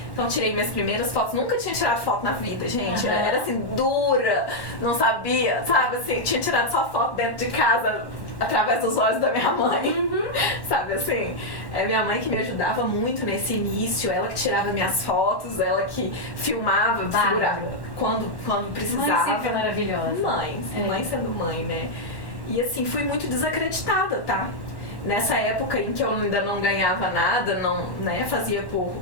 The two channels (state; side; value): late; right; 1.1 ms